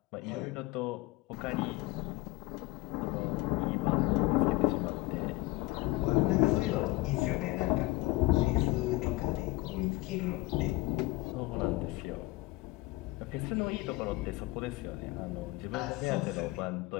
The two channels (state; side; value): quieter; right; 20.7 dB